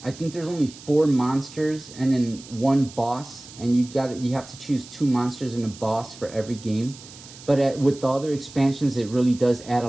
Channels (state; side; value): noise; right; hiss, 18 dB below the sound